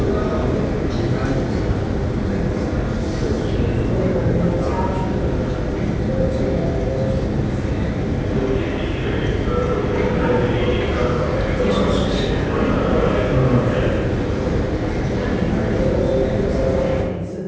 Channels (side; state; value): both; identical; correlation 1.00